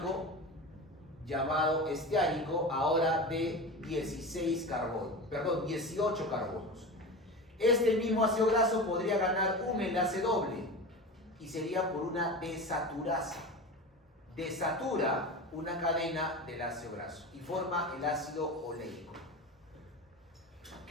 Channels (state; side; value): normal; both; correlation 0.28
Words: ahora de 18 carbonos. Este mismo ácido graso podría ganar un enlace doble y sería por una desaturasa. Desatura una cadena del ácido graso y forma el ácido oleico.